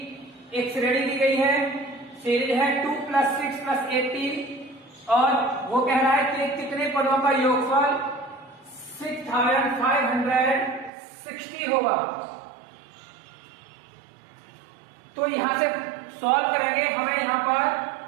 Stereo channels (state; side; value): drops out; left; at 10.9 s